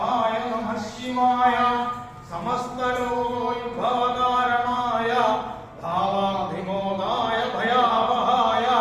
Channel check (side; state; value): both; identical; correlation 1.00